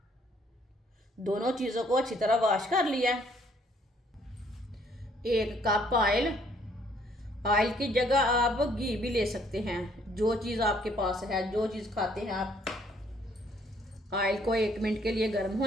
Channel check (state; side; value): normal; both; correlation 0.65